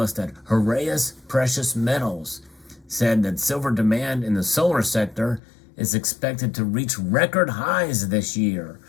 at Heraeus Precious Metals said that silver demand in the solar sector is expected to reach record highs this year,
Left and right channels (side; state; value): right; drops out; at 5.4 s